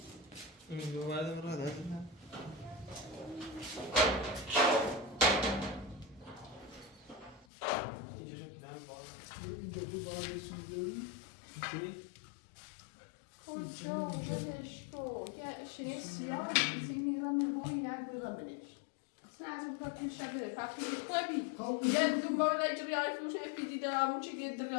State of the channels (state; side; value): drops out; right; at 7.5 s